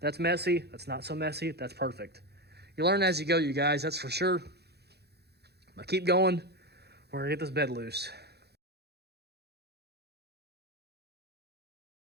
messy. That's not so messy. That's perfect. You learn as you go, you guys. That's for sure. But keep going. We're going to get this bed loose.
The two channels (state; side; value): late; left; 0.48 ms